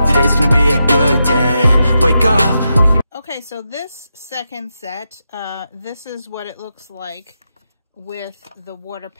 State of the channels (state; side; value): inverted; both; correlation -0.86